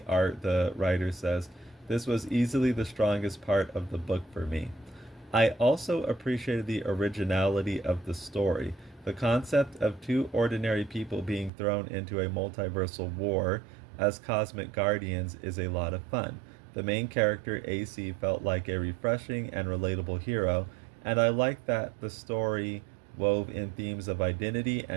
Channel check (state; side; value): drops out; left; at 11.5 s